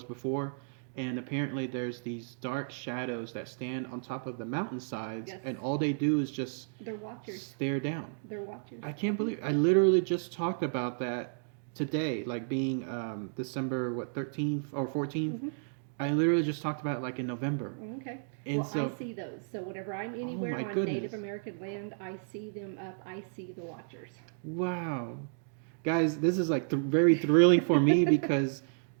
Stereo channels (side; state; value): left; silent; digital silence